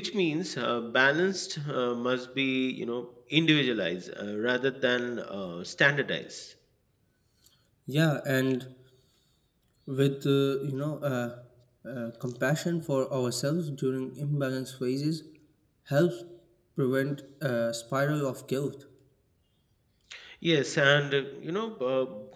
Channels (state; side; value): identical; both; correlation 1.00